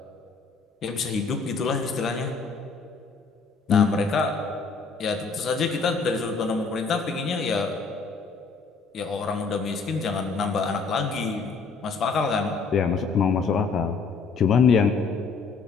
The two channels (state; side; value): quieter; right; 4.7 dB